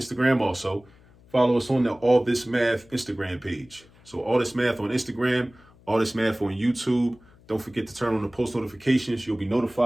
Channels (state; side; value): noise; left; hum, 27 dB below the sound